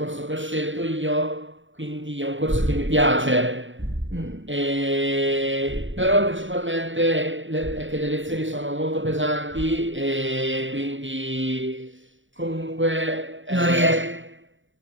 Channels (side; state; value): left; late; 0.56 ms